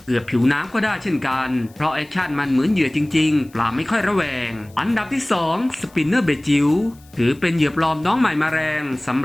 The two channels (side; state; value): left; noise; hiss, 28 dB below the sound